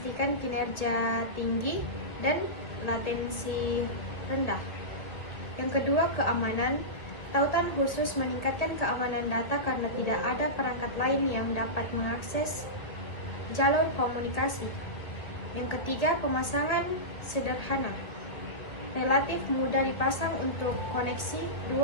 kinerja tinggi dan latensi rendah. Yang kedua, keamanan. Tautan khusus meningkatkan keamanan data karena tidak ada perangkat lain yang dapat mengakses jalur komunikasi. Yang ketiga, pemasangan sederhana. Relatif mudah dipasang untuk koneksi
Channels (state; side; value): late; right; 2.0 ms